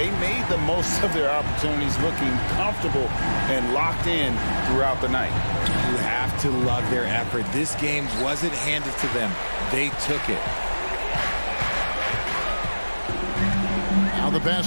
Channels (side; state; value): both; inverted; correlation -1.00